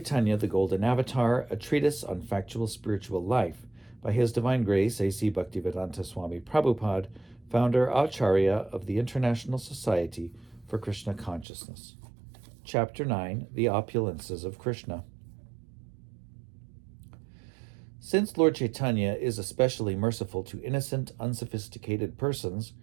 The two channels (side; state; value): left; drops out; at 11.5 s